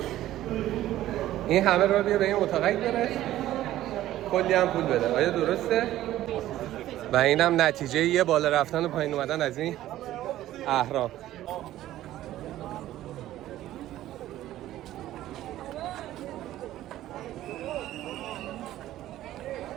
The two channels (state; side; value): quieter; left; 14.0 dB